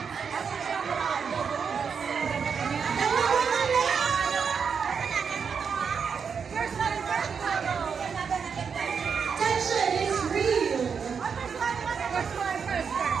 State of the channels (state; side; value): quieter; left; 6.3 dB